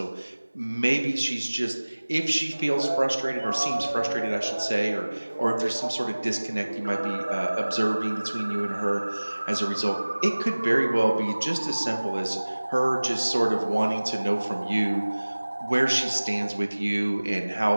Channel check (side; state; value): both; inverted; correlation -1.00